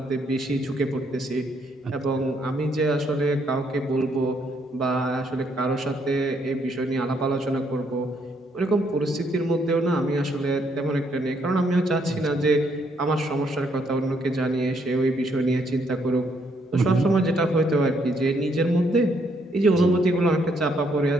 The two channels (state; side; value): normal; both; correlation 0.72